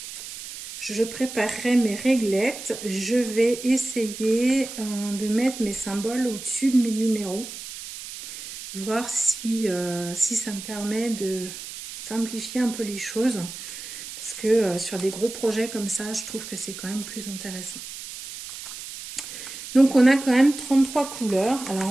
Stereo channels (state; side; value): noise; right; hiss, 11 dB below the sound